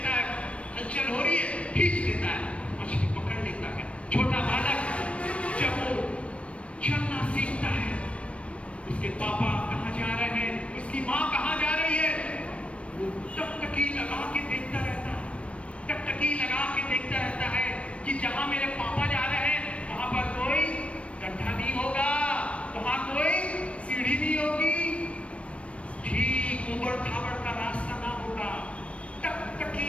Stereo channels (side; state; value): right; late; 0.062 ms